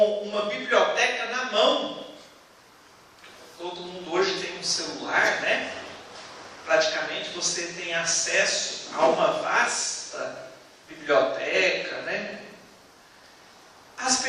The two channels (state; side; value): identical; both; correlation 1.00